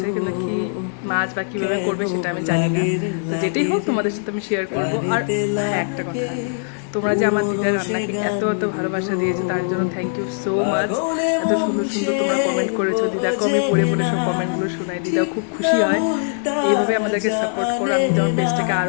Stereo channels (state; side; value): silent; right; digital silence